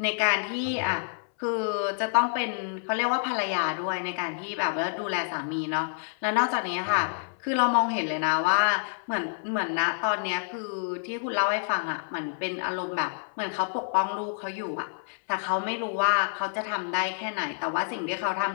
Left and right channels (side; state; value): right; silent; 59 dB below the other